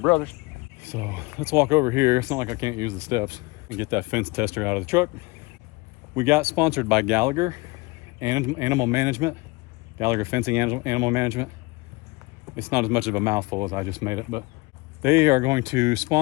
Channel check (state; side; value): quieter; right; 24.4 dB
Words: So let's walk over here. It's not like I can't use the steps and get that fence tester out of the truck. We got sponsored by Gallagher Animal Management. Gallagher Fencing Animal Management. It's not as much of a mouthful as I just made it, but they are going to